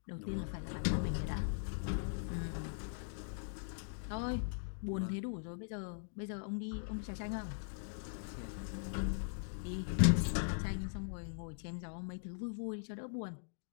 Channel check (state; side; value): silent; right; digital silence